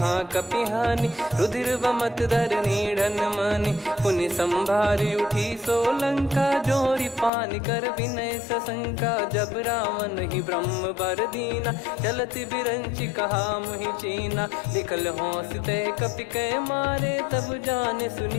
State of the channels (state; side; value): drops out; right; at 7.3 s